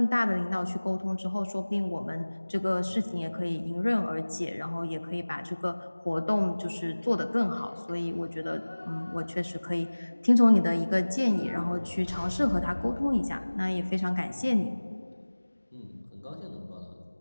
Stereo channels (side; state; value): both; inverted; correlation -1.00